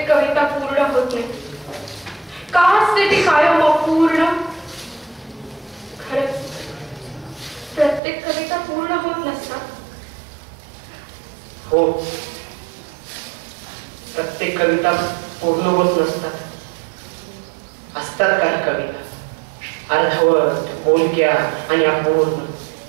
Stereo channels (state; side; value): drops out; left; at 8.0 s